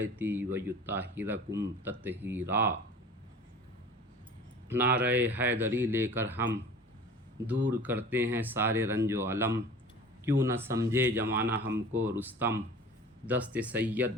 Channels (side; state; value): both; normal; correlation 0.41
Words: ویطہرکم تطہیرا۔ نعرہ حیدری لے کر ہم دور کرتے ہیں سارے رنج و علم، کیوں نہ سمجھے زمانہ ہم کو رستم، دست سید